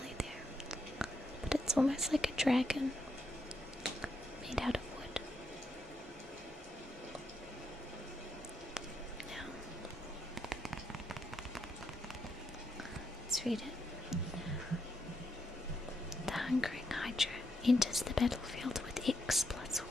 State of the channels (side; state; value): both; normal; correlation 0.80